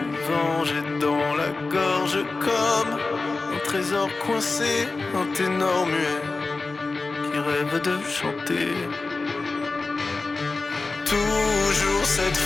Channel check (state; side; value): quieter; right; 3.7 dB